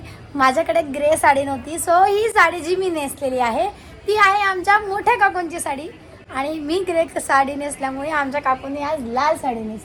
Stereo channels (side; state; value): both; identical; correlation 1.00